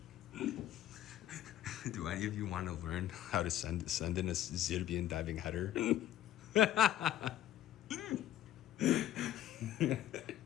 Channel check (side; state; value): right; quieter; 12.7 dB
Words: Do any of you want to learn how to send in a Zirbian diving header? You